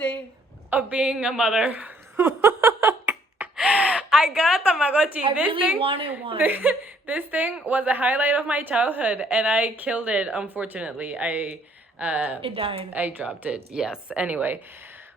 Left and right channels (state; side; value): normal; both; correlation 0.64